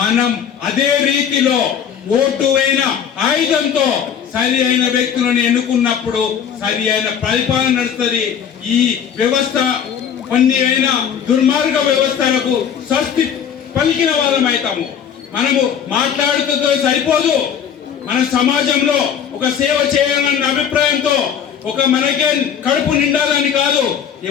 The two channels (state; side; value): quieter; right; 8.1 dB